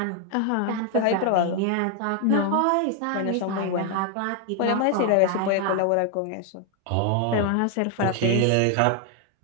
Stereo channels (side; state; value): both; different; correlation 0.01